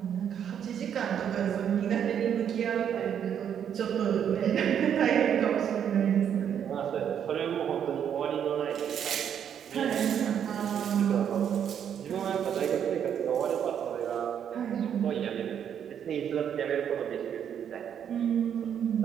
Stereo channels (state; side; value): quieter; left; 8.8 dB